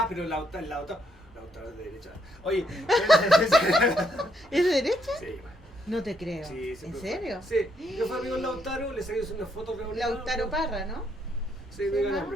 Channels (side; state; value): both; normal; correlation 0.74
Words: pero Lautaro es de derecha. Oye, ¿Es de derecha? sí, No te creo. sí, ¿En siempre serio? fue. Sí, yo fui amigo de Lautaro, le saqué una foto reunida. Lautaro Parra, ¿no? Sí, no diga